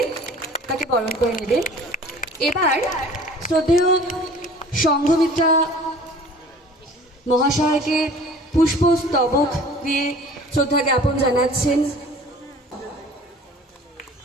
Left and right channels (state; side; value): normal; both; correlation 0.47